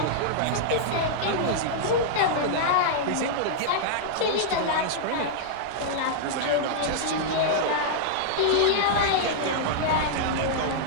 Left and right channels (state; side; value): different; both; correlation -0.02